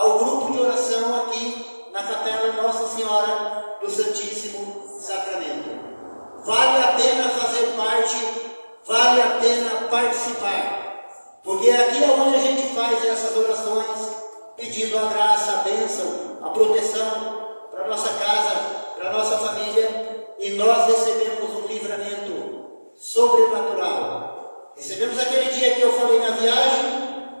grupo de oração aqui na capela Nossa Senhora do Santíssimo Sacramento. Vale a pena fazer parte, vale a pena participar, porque aqui é onde a gente faz essas orações, pedindo a graça, a bênção, a proteção para a nossa casa, para a nossa família, e nós recebemos um livramento sobrenatural. Recebemos aquele dia que eu falei na viagem,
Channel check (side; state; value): both; inverted; correlation -1.00